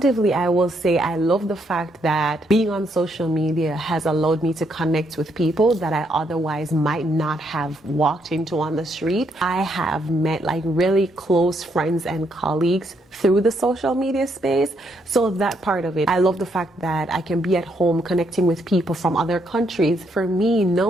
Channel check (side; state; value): both; normal; correlation 0.74